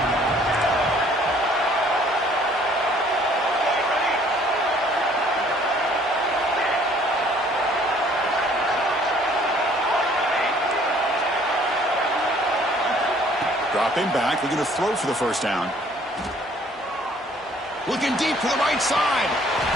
Dropping back, looking to throw for the first down. Looking deep to the right side.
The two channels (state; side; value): normal; both; correlation 0.58